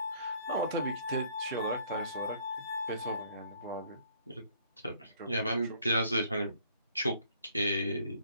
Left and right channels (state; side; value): inverted; both; correlation -0.61